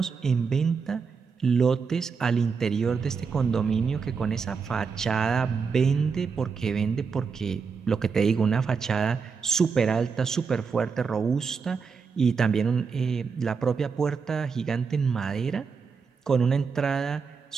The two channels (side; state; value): left; quieter; 5.5 dB